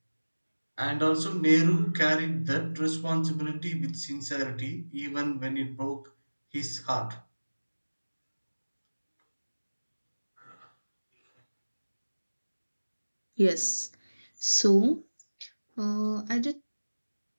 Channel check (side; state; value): both; inverted; correlation -1.00